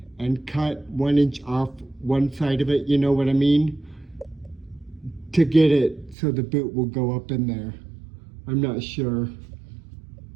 and cut 1 inch off one side of it, you know what I mean? To get it so the boot will go up in there. I'm not sure.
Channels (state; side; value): drops out; left; at 6.2 s